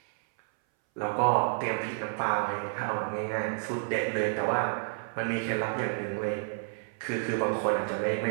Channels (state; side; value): silent; left; 58 dB below the other